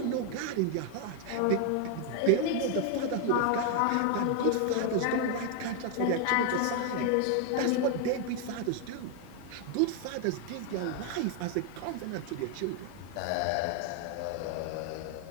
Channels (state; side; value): different; both; correlation 0.00